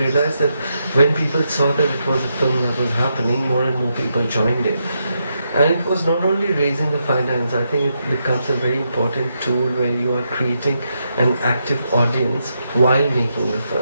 that when people saw that it was a film that was happening, more and more people joined it. And it was not only raising the finance, I think it becomes a very important tool where you are creating an active audience while making the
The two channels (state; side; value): inverted; both; correlation -0.82